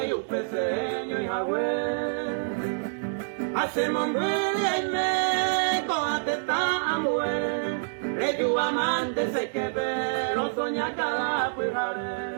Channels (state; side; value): silent; left; digital silence